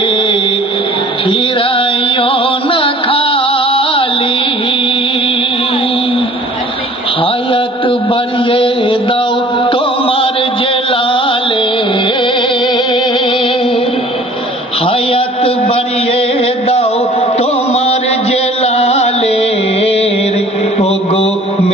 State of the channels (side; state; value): both; normal; correlation 0.50